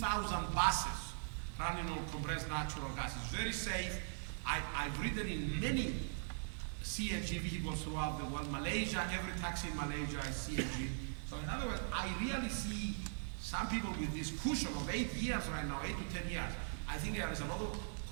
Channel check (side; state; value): left; silent; 51 dB below the other